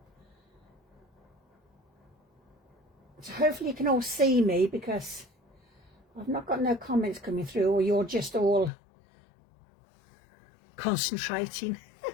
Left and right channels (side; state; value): right; drops out; at 8.7 s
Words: So hopefully you can all see me, because I've not got no comments coming through, or you're just all concentrating.